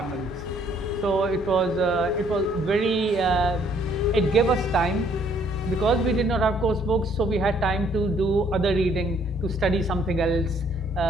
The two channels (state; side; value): normal; both; correlation 0.64